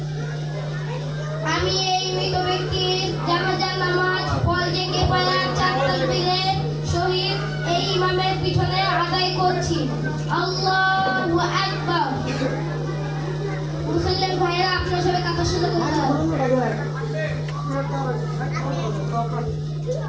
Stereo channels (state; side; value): identical; both; correlation 1.00